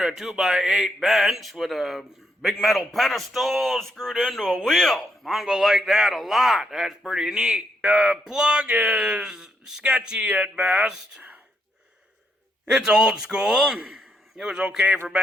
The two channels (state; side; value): normal; both; correlation 0.77